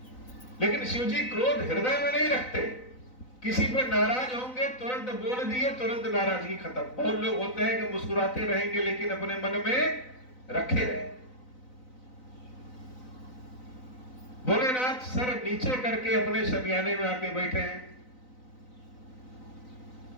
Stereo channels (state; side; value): late; right; 4.0 ms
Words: लेकिन शिव जी क्रोध हृदय में नहीं रखते। किसी पे नाराज होंगे तुरंत बोल दिए, तुरंत नाराजगी खत्म। बहुत लोग होते हैं कि मुस्कुराते रहेंगे लेकिन अपने मन में रखे रहे। भोलेनाथ सर नीचे करके अपने शमियाने में आके बैठे हैं।